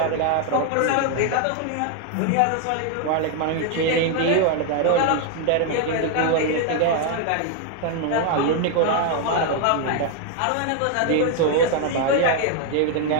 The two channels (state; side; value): different; both; correlation 0.00